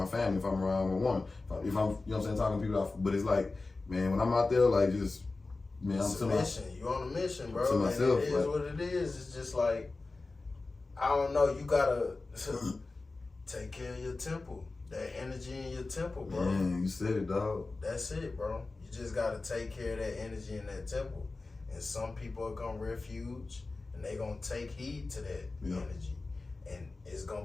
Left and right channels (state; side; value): quieter; right; 3.5 dB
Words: family, if I'm around a woman, if I'm, you know what I'm saying, talking to people but it's like, man, when I'm out there, like just, man, it's I'm a mission. You on a mission, bro. To myself, and it is what it is. It's just like, I don't know, you gotta take care of your temple. That energy in your temple, bro. Man, you said it, dog. That's it, bro. You just gotta take care of that energy in that temple. And some people are gonna refuge and they gonna take heed to that energy. And it's